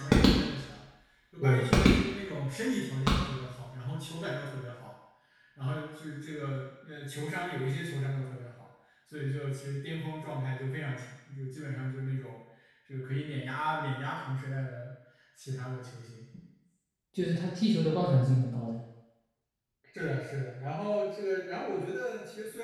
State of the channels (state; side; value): identical; both; correlation 1.00